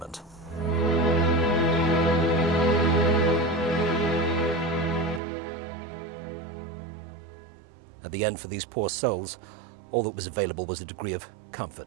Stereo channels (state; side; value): drops out; left; at 5.2 s